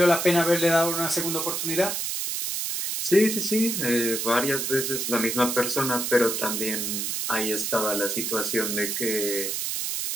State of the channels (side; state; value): right; noise; hiss, 1 dB below the sound